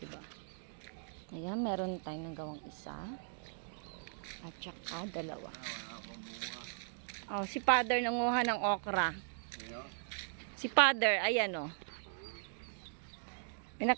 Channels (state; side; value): silent; left; digital silence